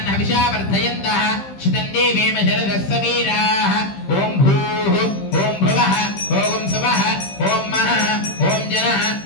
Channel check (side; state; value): right; late; 15 ms